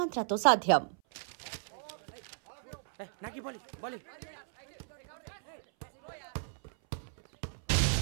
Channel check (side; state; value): left; silent; 55 dB below the other